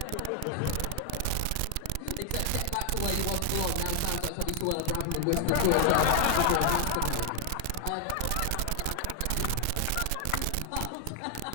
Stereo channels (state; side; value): different; both; correlation 0.00